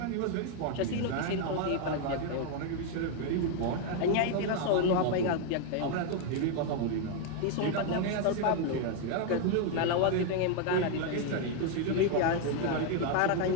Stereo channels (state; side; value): different; both; correlation 0.01